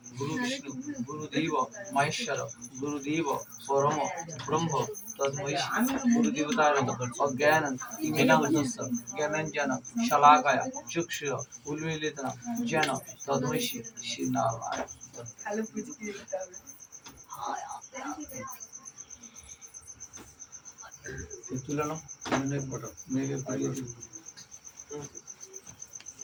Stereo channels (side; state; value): both; identical; correlation 1.00